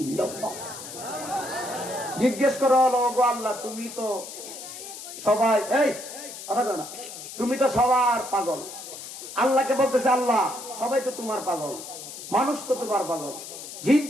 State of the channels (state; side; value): noise; left; hiss, 11 dB below the sound